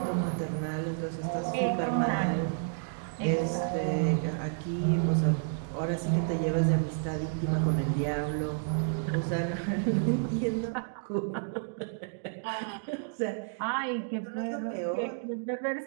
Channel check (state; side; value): silent; left; digital silence